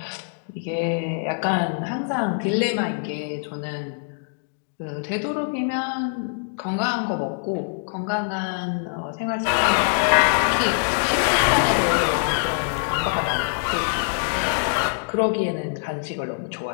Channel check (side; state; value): right; silent; digital silence